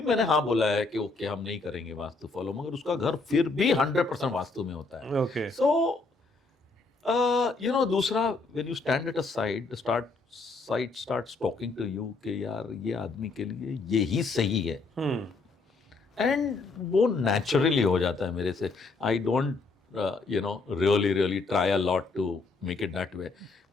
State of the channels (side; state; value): right; quieter; 3.8 dB